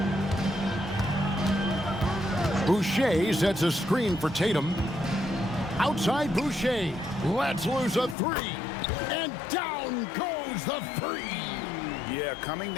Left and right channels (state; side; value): drops out; right; at 8.2 s